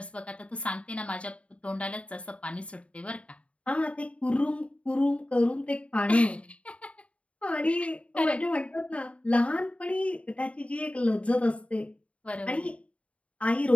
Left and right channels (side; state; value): right; late; 0.063 ms